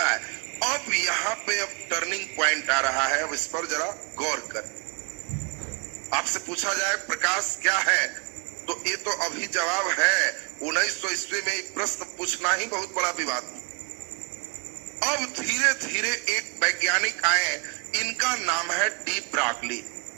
है। अब यहाँ पे अब टर्निंग पॉइंट आ रहा है। अब इस पर जरा गौर करें। आपसे पूछा जाए प्रकाश क्या है, तो ये तो अभी जवाब है। 1900 ईस्वी में एक प्रश्न पूछना ही बहुत बड़ा विवाद। अब धीरे धीरे एक वैज्ञानिक आए, इनका नाम है डी ब्रॉगली।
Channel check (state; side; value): quieter; left; 34.2 dB